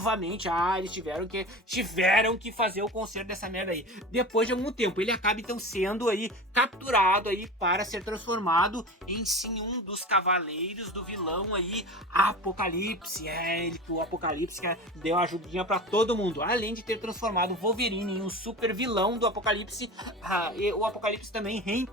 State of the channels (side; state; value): both; normal; correlation 0.32